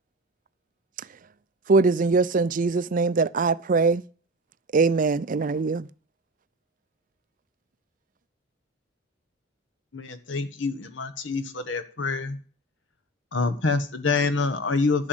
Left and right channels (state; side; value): normal; both; correlation 0.29